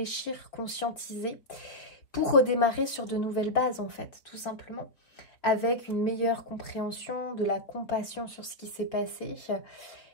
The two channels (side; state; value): right; late; 3.9 ms